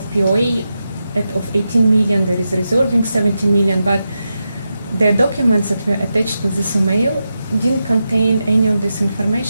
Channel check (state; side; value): inverted; both; correlation -0.89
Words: POA of 18 million, there is reserving 70 million, but the documents that were attached to this email didn't contain any of this